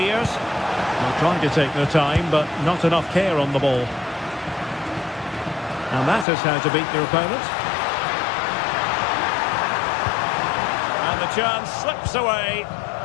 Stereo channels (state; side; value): drops out; right; at 6.2 s